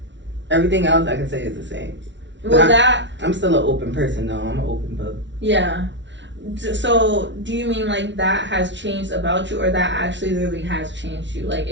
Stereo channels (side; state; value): left; late; 0.53 ms